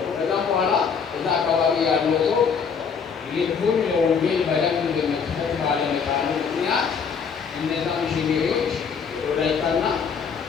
ከዛም በኋላ እዛ አካባቢ ያለው ሰው ልቡን ለወንጌል በደንብ በመክፈት ባለመቻሉ ምክንያት እነዛ ሚሽነሪዎች ወላይታና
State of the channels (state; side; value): quieter; right; 6.2 dB